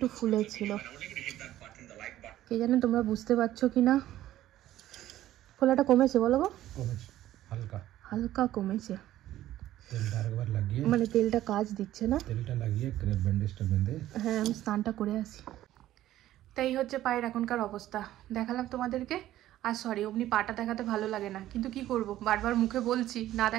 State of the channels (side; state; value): left; quieter; 13.7 dB